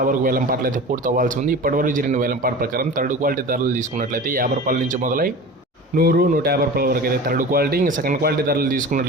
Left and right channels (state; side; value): normal; both; correlation 0.35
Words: వరకు వేలంపాట్లు అయితే పూర్తి అవ్వాల్సి ఉంది. ఇప్పటివరకు జరిగిన వేలంపాటు ప్రకారం థర్డ్ క్వాలిటీ ధరలు తీసుకున్నట్లయితే ₹50 నుంచి మొదలై 100, ₹150 వరకు అయితే థర్డ్ క్వాలిటీ. ఇంకా సెకండ్ క్వాలిటీ ధరలు